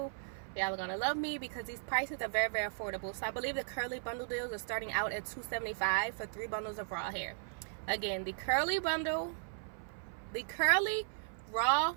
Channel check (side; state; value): left; silent; 53 dB below the other